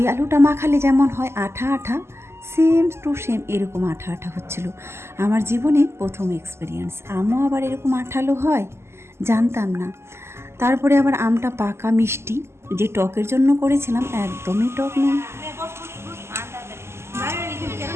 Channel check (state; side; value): late; left; 0.12 ms